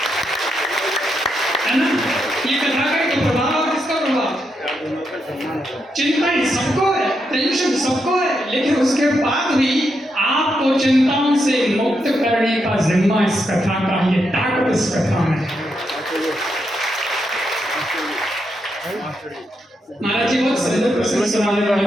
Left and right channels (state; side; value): normal; both; correlation 0.82